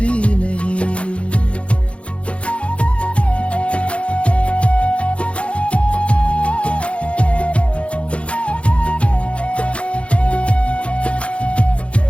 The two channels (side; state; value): right; late; 0.061 ms